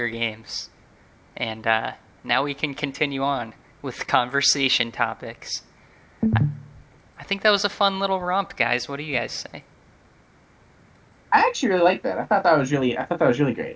Games. And now we can continue on with conversation topics. I think that was a fun little romp, guys. What do you guys say? I actually really like that. I thought that was really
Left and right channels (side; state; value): both; identical; correlation 1.00